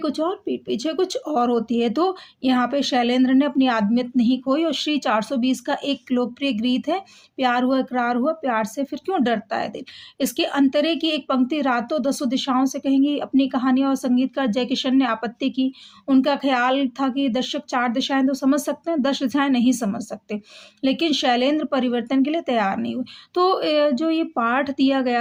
और पीठ पीछे कुछ और होती है, तो यहाँ पे शैलेंद्र ने अपनी आदमियत नहीं खोई और श्री 420 का एक लोकप्रिय गीत है, प्यार हुआ इकरार हुआ, प्यार से फिर क्यों डरता है दिल। इसके अंतरे की एक पंक्ति रातों दसों दिशाओं से कहेंगी अपनी कहानी और संगीतकार जयकिशन ने आपत्ति की। उनका ख़्याल था कि दर्शक 4 दिशाएँ तो समझ सकते हैं, 10 दिशाएँ नहीं समझ सकते। लेकिन शैलेंद्र परिवर्तन के लिए तैयार नहीं हुए। तो जो ये पाठ दिया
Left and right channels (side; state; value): both; identical; correlation 1.00